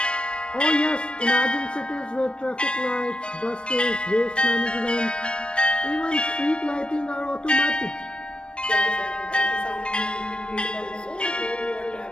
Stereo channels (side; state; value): right; late; 0.056 ms